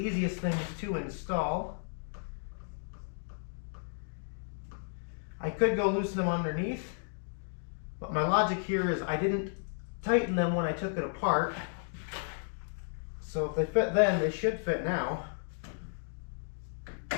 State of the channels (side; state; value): right; silent; digital silence